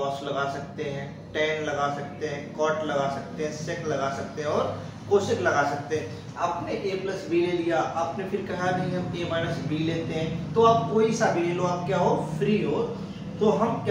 लगा सकते हैं, टेन लगा सकते हैं, कॉट लगा सकते हैं, सेक लगा सकते हैं और कोसेक लगा सकते हैं। आपने a प्लस बी ले लिया, आपने फिर कहा नहीं हम a माइनस बी लेते हैं, तो आप कोई सा भी ले लो, आप क्या हो फ्री हो। तो हम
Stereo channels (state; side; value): identical; both; correlation 1.00